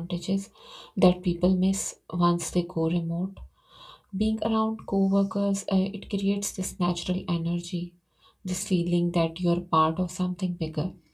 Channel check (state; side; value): identical; both; correlation 1.00